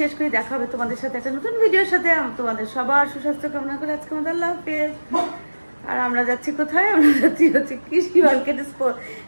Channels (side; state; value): both; inverted; correlation -1.00